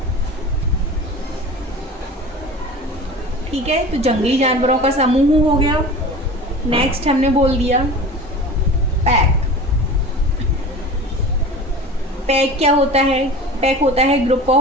ठीक है, तो जंगली जानवरों का समूह हो गया। नेक्स्ट हमने बोल दिया पैक। पैक क्या होता है? पैक होता है group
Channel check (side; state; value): both; normal; correlation 0.36